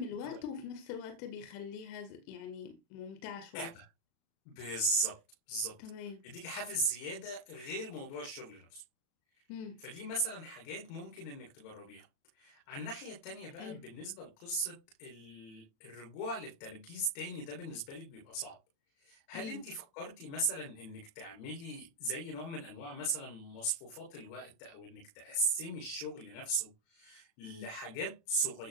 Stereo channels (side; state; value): right; late; 36 ms